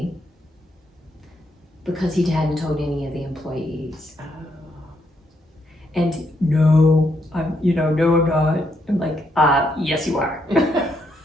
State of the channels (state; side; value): normal; both; correlation 0.77